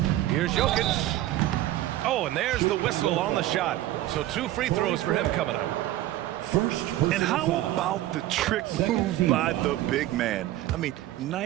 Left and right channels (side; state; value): left; quieter; 14.9 dB